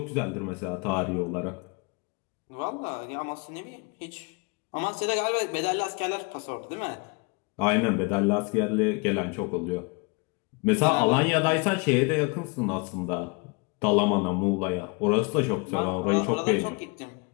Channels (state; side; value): quieter; right; 30.9 dB